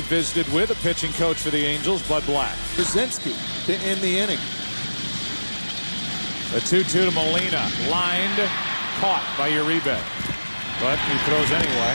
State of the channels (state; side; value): inverted; both; correlation -1.00